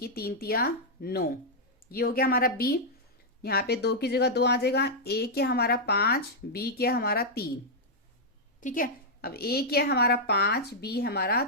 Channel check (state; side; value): normal; both; correlation -0.05